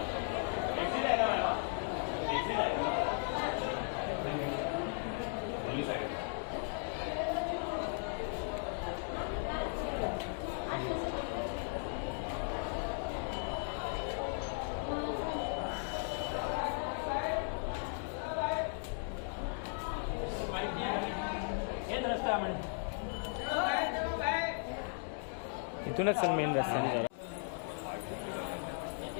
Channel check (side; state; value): right; silent; 53 dB below the other